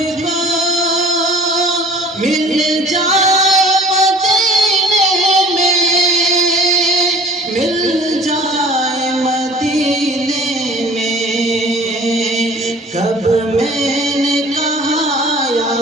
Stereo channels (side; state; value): both; normal; correlation 0.47